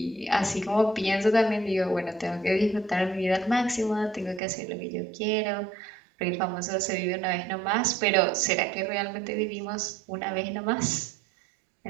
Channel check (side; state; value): left; drops out; at 4.4 s